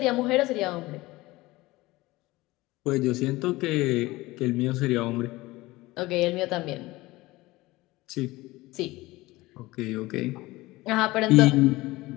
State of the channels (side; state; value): right; quieter; 19.8 dB